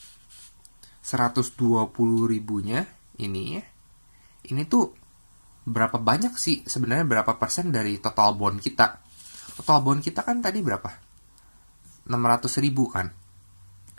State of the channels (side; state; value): both; inverted; correlation -1.00